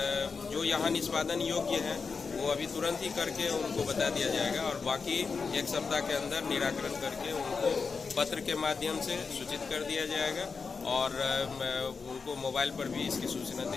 जो यहाँ निष्पादन योग्य है वो अभी तुरंत ही करके उनको बता दिया जाएगा, और बाकी 1 सप्ताह के अंदर निराकरण करके उनको पत्र के माध्यम से सूचित कर दिया जाएगा, और उनको मोबाइल पर भी इसकी सूचना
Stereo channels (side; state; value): right; quieter; 5.0 dB